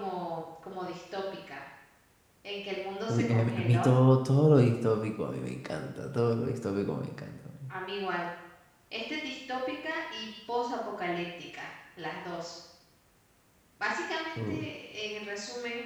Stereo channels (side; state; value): both; identical; correlation 1.00